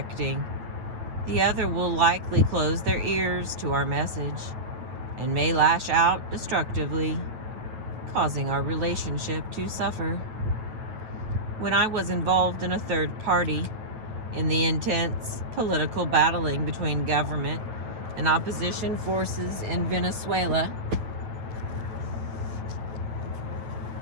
the other will likely close their ears to our message and may lash out destructively, causing our relationship to suffer. When I was involved in a third party in the intense political battling between government and opposition forces in Venezuela,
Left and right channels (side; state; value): left; late; 9.1 ms